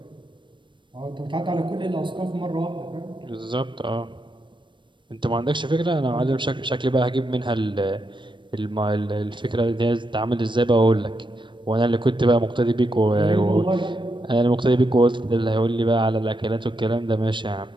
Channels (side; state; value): left; late; 0.23 ms